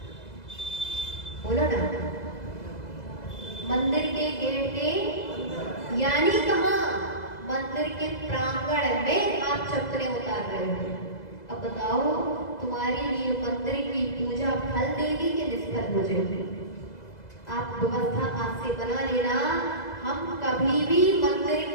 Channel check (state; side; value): late; right; 2.0 ms